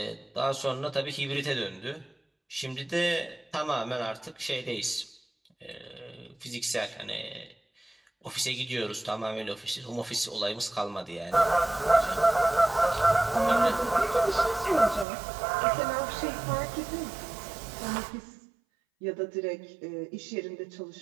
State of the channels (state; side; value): drops out; left; at 15.1 s